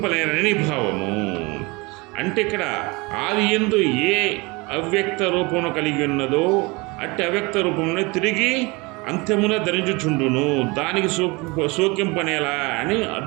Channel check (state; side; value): quieter; left; 25.9 dB